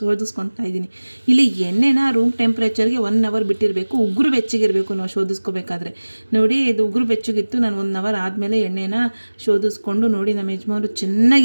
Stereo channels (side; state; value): both; inverted; correlation -1.00